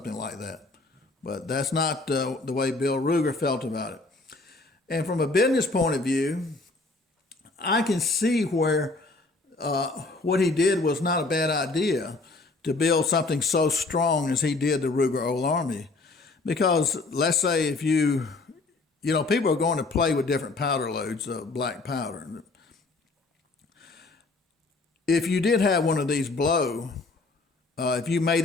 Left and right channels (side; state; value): right; quieter; 3.4 dB